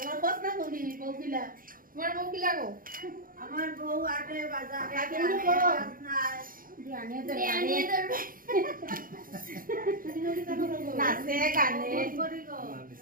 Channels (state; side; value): late; left; 0.41 ms